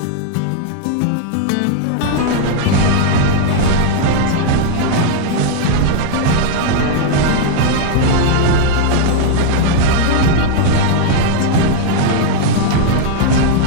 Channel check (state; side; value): different; both; correlation 0.00